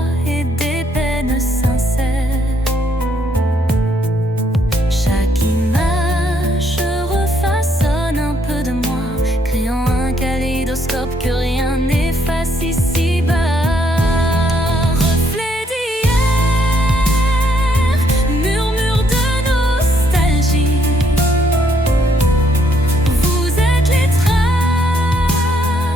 et des peines sincères. Chaque image refaçonne un peu de moi, créant un kaléidoscope que rien n'efface ici-bas. Reflet d'hier, murmure de nostalgie, vous êtes les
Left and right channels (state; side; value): normal; both; correlation 0.70